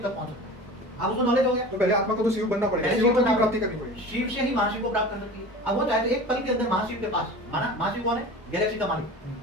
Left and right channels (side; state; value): both; normal; correlation 0.36